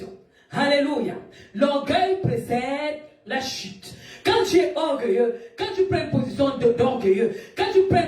Alléluia. L'orgueil précède la chute. Quand tu es orgueilleux, quand tu prends une position d'orgueilleux, quand tu prends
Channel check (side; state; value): both; identical; correlation 1.00